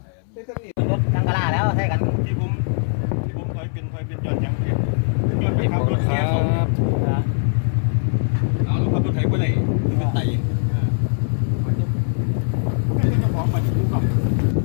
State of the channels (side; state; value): right; silent; 65 dB below the other